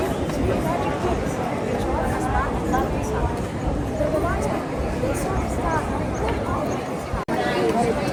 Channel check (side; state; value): both; identical; correlation 1.00